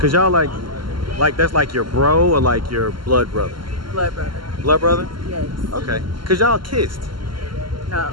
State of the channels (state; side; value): late; left; 0.72 ms